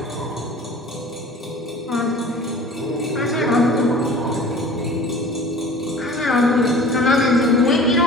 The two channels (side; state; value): both; normal; correlation 0.44